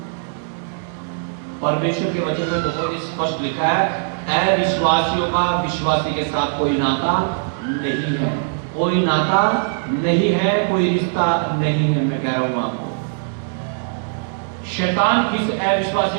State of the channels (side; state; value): left; silent; digital silence